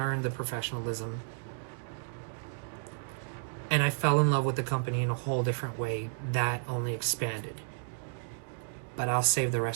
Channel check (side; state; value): left; silent; digital silence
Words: the professionalism. And I fell in love with the company in a whole different way that only expanded. But I'll save the